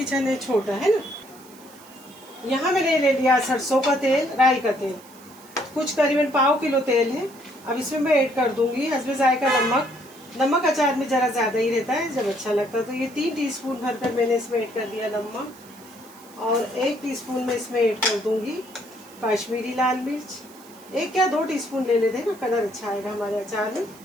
है छोटा है ना। यहाँ मैंने ले लिया सरसों का तेल, राई का तेल, कुछ करीबन पाव किलो तेल है। अब इसमें मैं ऐड कर दूंगी हस्बे जायका नमक। नमक अचार में ज़रा ज़्यादा ही रहता है जब अच्छा लगता है। तो ये 3 टीस्पून भरकर मैंने इसमें ऐड कर दिया नमक, और 1 टीस्पून में इसमें ऐड कर दूंगी कश्मीरी लाल मिर्च। 1 या 2 टीस्पून ले लेते हैं ना, कलर अच्छा आएगा हमारे अचार में।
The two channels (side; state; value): right; noise; hiss, 23 dB below the sound